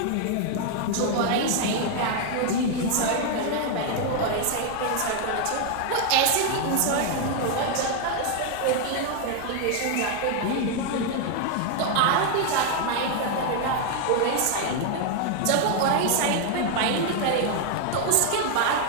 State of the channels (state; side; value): different; both; correlation 0.00